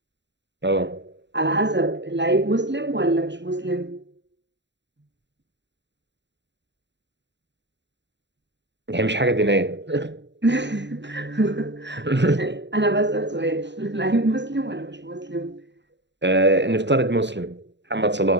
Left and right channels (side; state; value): left; late; 0.52 ms